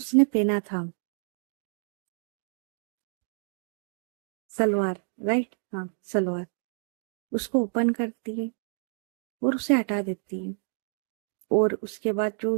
पहना था सलवार, राइट, हाँ सलवार, उसको ओपन करती है और उसे हटा देती है। और उसके बाद जो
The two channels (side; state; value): left; silent; digital silence